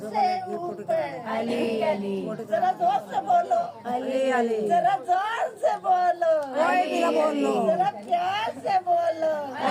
ऊपर अली अली। जरा जोर से बोलो अली अली। जरा जोर से बोलो कोई भी ना बोलो। जरा प्यार से बोलो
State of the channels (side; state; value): both; identical; correlation 1.00